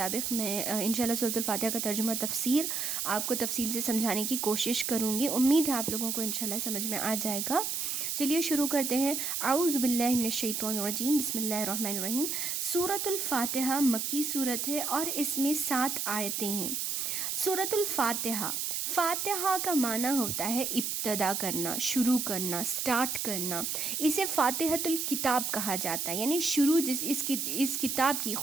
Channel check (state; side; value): noise; right; hiss, 1 dB below the sound